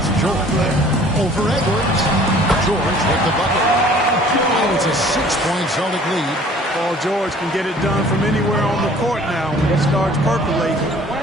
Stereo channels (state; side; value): normal; both; correlation 0.52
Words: George. Over Edwards. George with the bucket. Oh, it's a 6-point Celtic lead. Paul George can get it done from anywhere on the court now. When he starts percolating,